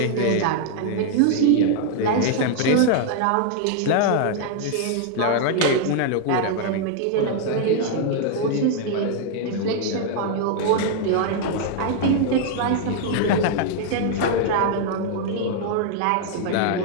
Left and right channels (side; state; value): both; different; correlation 0.00